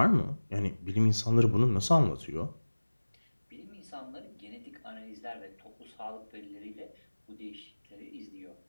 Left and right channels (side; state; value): both; inverted; correlation -1.00